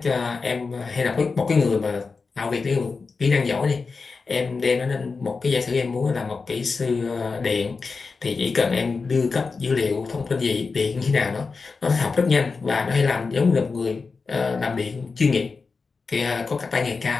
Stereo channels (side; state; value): right; quieter; 4.5 dB